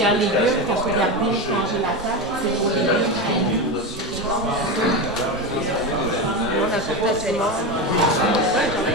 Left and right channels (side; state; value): both; normal; correlation 0.17